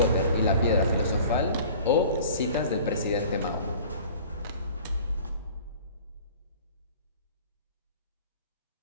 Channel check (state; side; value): inverted; both; correlation -0.46